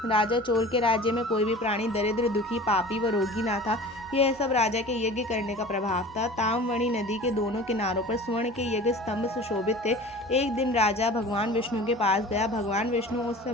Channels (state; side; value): normal; both; correlation 0.40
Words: राजा चोल के राज्य में कोई भी प्राणी दरिद्र, दुखी, पापी व रोगी ना था। यह सब राजा के यज्ञ करने का प्रभाव था। ताम्रवणी नदी के दोनों किनारों पर स्वर्ण के यज्ञ स्तंभ सुशोभित थे। एक दिन राजा भगवान विष्णु के पास गया। भगवान विष्णु उस